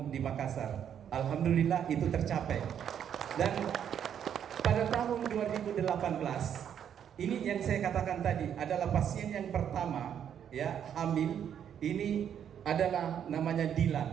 di Makassar. Alhamdulillah itu tercapai. Dan pada tahun 2018 ini yang saya katakan tadi adalah pasien yang pertama, ya, hamil. Ini adalah namanya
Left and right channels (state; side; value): quieter; left; 8.9 dB